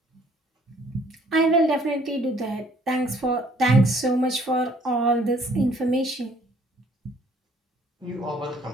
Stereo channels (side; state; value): both; normal; correlation 0.60